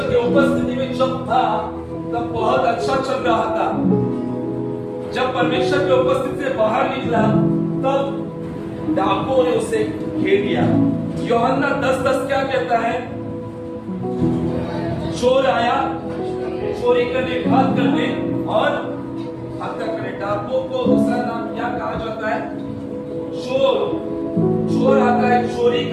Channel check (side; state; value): both; identical; correlation 1.00